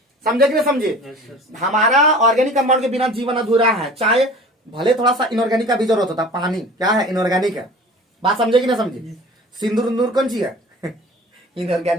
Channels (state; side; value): normal; both; correlation 0.42